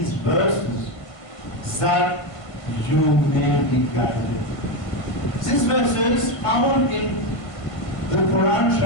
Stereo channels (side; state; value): right; late; 1.5 ms